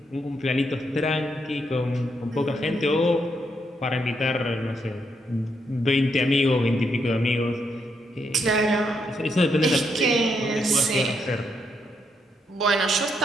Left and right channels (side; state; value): both; normal; correlation 0.78